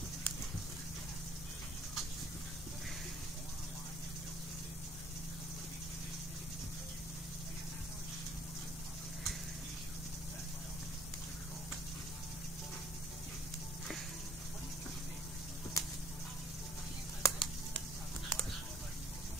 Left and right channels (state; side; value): normal; both; correlation 0.58